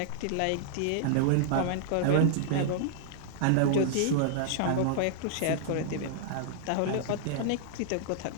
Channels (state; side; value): different; both; correlation -0.01